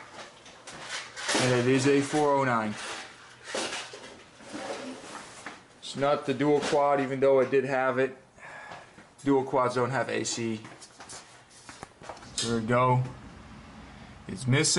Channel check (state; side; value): identical; both; correlation 1.00